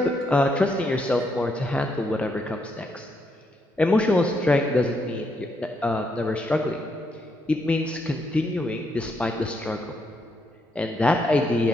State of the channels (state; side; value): normal; both; correlation 0.77